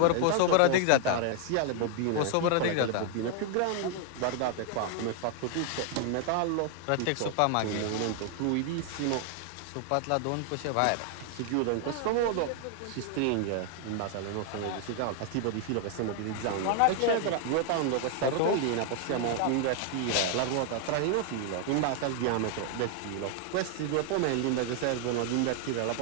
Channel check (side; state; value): both; different; correlation 0.00